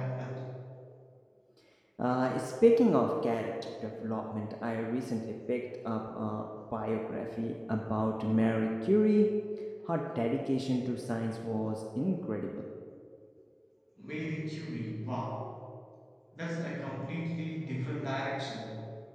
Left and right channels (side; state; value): both; identical; correlation 1.00